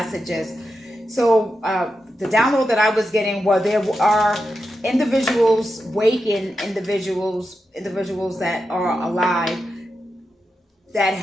So the download that I was getting was there are individuals, waking individuals that are alive that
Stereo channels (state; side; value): normal; both; correlation 0.89